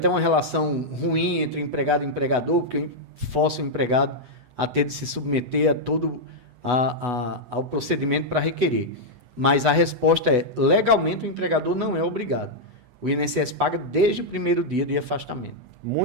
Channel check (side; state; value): left; late; 8.1 ms